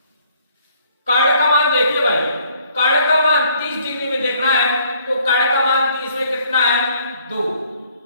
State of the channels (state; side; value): inverted; both; correlation -0.62